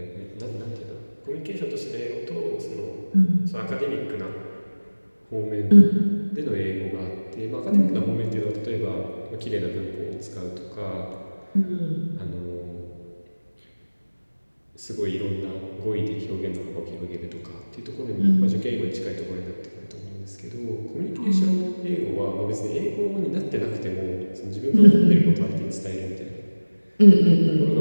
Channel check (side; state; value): both; inverted; correlation -1.00